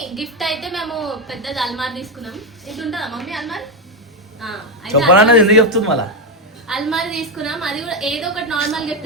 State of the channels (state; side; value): normal; both; correlation 0.06